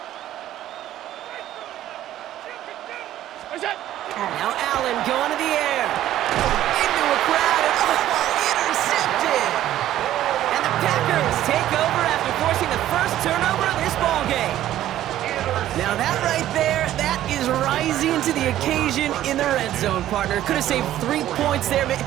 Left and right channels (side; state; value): left; quieter; 12.9 dB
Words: Now Allen going to the air. Into a crowd and intercepted. And the Packers take over after forcing the first turnover of this ballgame. Now that right there, that is rising to the occasion in the red zone, partner. Could have saved 3 points there,